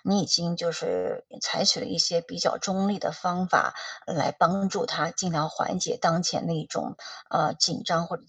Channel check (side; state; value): both; identical; correlation 1.00